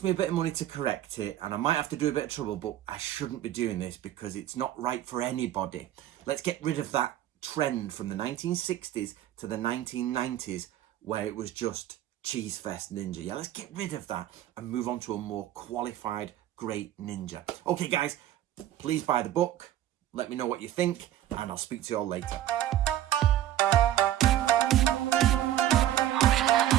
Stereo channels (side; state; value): left; quieter; 12.5 dB